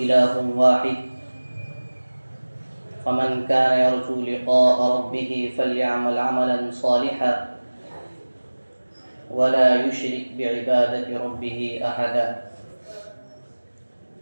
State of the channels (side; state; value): both; inverted; correlation -1.00